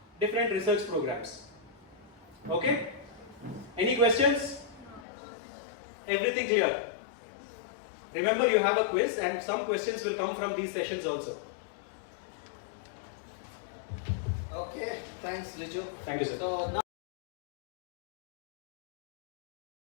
different research programs. Okay? Any questions? Everything clear? Remember, you have a quiz and some questions will come from these sessions also. Okay, thanks Riju. Thank you, sir. So now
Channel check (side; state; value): right; drops out; at 5.1 s